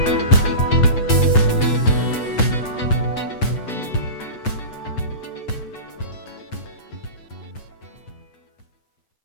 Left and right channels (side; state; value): right; late; 8.2 ms